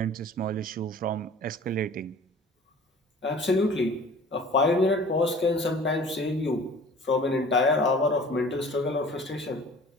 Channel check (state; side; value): normal; both; correlation 0.46